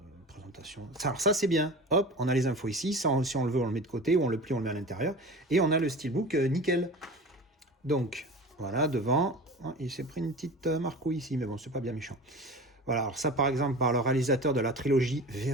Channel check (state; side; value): normal; both; correlation 0.35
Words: présentation. Alors ça, c'est bien. Hop, on a les infos ici. Ça, si on le veut, on le met de côté, ou on le plie, on le met à l'intérieur. Et on a le steelbook nickel. Donc, Voilà, devant. Oh, il s'est pris une petite marcouille ici, mais bon, c'est pas bien méchant. Voilà, alors ça par exemple par le réalisateur de la trilogie